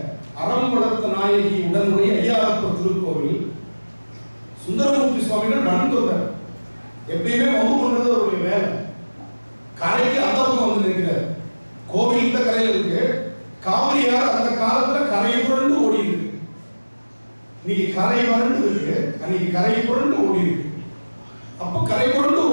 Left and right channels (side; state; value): both; inverted; correlation -1.00